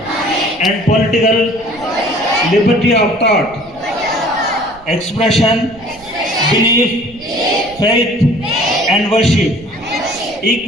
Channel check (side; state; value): right; noise; rumble, 24 dB below the sound